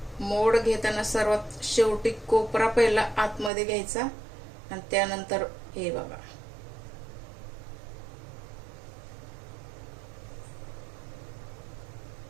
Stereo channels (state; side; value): drops out; left; at 3.5 s